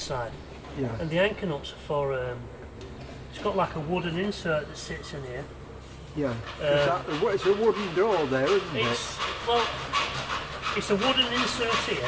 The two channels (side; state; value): both; identical; correlation 1.00